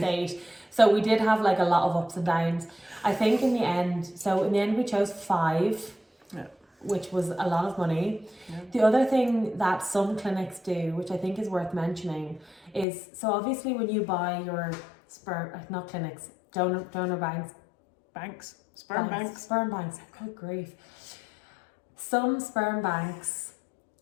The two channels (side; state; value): right; drops out; at 12.9 s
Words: 8. So we did have like a lot of ups and downs. I think in the end we chose 5. Yeah. Which was a lot of money. Yeah. The other thing that some clinics do, which I think is worth mentioning, is so obviously when you buy your sperm, not clinics, donor banks, sperm banks. Good grief. Some sperm banks